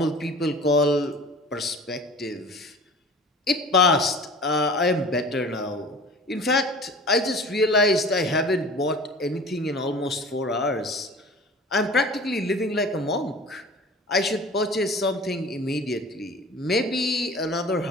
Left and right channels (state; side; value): normal; both; correlation 0.42